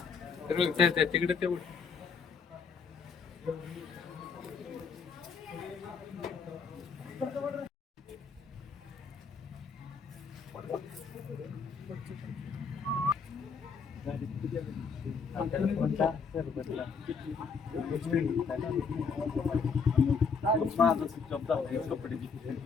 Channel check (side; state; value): right; quieter; 5.4 dB